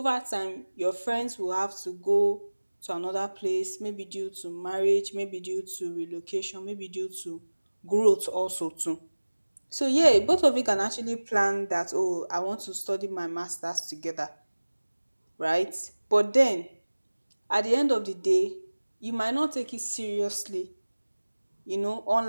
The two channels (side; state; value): both; inverted; correlation -1.00